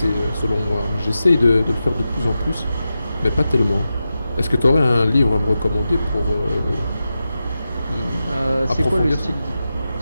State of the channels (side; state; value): both; inverted; correlation -0.91